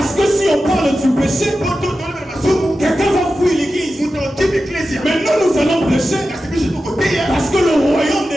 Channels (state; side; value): normal; both; correlation 0.92